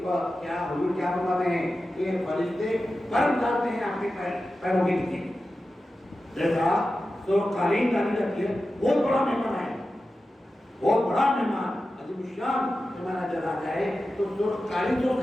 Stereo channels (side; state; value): both; normal; correlation 0.93